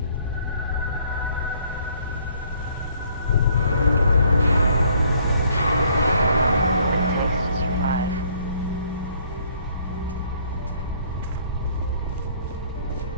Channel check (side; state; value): both; inverted; correlation -0.62